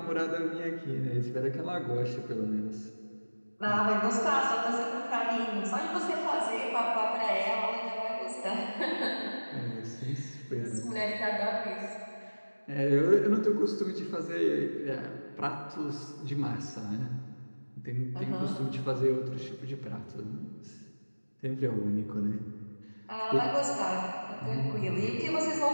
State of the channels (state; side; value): inverted; both; correlation -1.00